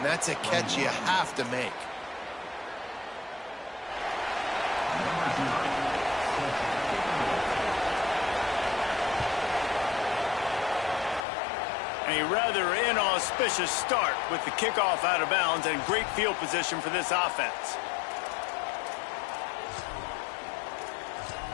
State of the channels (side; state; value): right; drops out; at 11.2 s